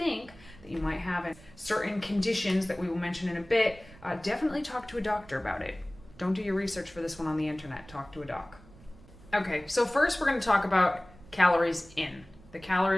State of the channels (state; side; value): noise; right; rumble, 22 dB below the sound